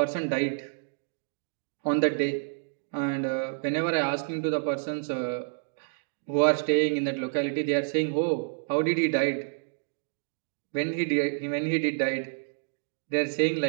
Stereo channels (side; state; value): left; silent; digital silence